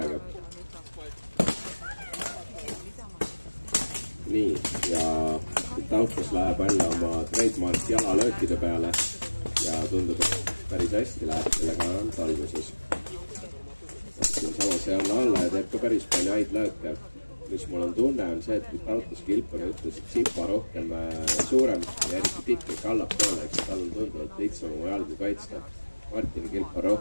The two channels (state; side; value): inverted; both; correlation -1.00